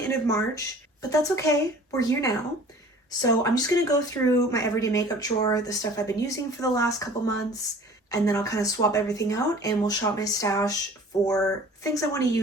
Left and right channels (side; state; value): both; normal; correlation 0.47